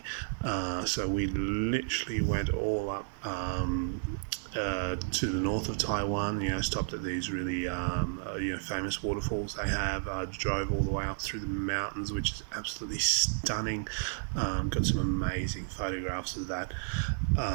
So we literally went all up to the north of Taiwan, stopped at these really famous waterfalls they have, drove all the way up through the mountains, which is absolutely stunning. Got some amazing photographs of that.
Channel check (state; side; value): silent; left; digital silence